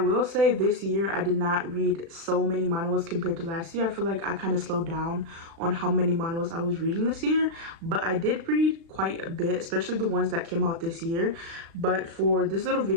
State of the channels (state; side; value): late; left; 36 ms